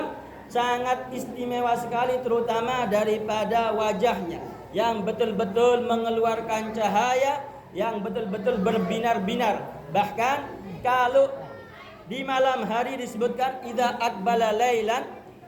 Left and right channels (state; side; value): identical; both; correlation 1.00